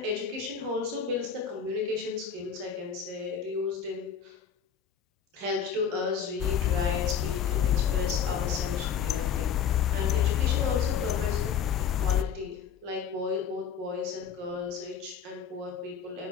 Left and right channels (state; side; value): quieter; right; 7.5 dB